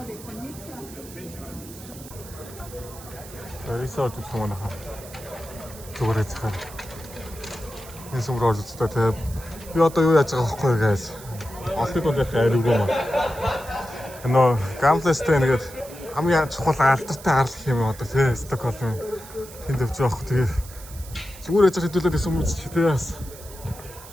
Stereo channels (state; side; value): noise; right; hiss, 17 dB below the sound